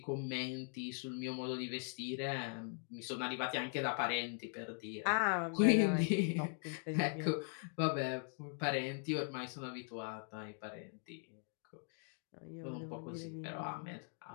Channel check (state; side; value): silent; right; 51 dB below the other